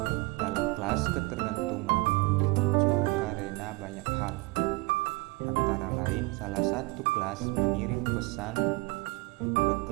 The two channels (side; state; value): left; quieter; 23.7 dB